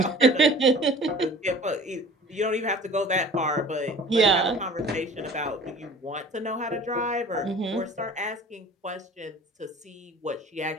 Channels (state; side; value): normal; both; correlation 0.45